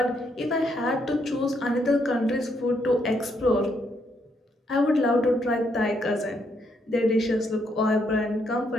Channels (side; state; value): both; normal; correlation 0.75